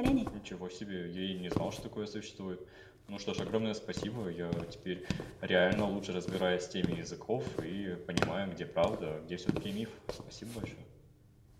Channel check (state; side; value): identical; both; correlation 1.00